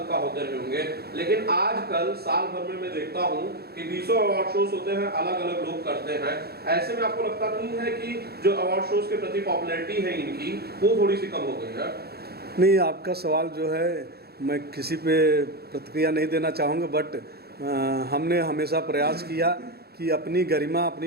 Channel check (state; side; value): late; left; 0.46 ms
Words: होते रहे होंगे। लेकिन आजकल साल भर में मैं देखता हूँ कि 20 अवार्ड शोज होते हैं, अलग अलग लोग करते हैं। ऐसे में आपको लगता नहीं है कि जो अवार्ड शोज के प्रति पॉपुलैरिटी है इनकी वो थोड़ी सी कम हो गई है? नहीं, आपका सवाल जो है मैं किसी पे प्रतिक्रिया नहीं देना चाहूँगा, बट हमने हमेशा प्रयास किया कि अपनी गरिमा,